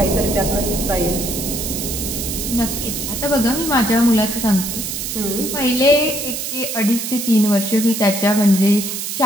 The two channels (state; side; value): noise; right; hiss, 4 dB below the sound